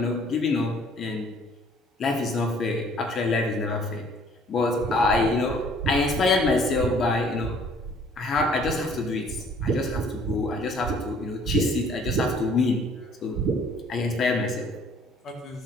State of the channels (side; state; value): both; normal; correlation 0.57